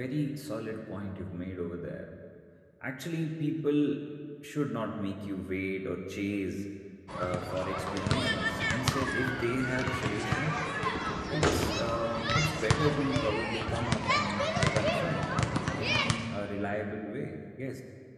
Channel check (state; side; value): identical; both; correlation 1.00